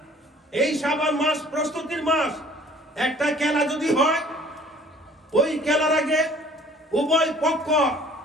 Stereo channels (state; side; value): normal; both; correlation 0.53